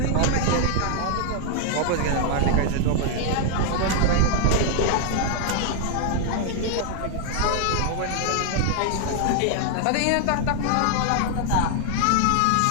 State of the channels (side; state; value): both; different; correlation 0.00